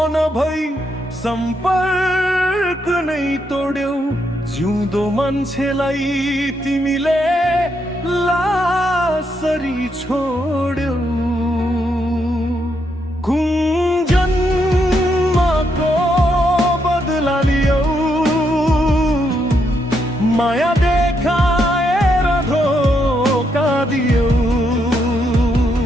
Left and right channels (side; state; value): both; normal; correlation 0.78